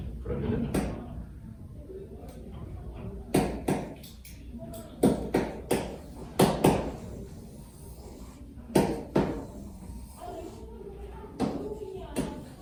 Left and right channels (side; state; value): both; identical; correlation 1.00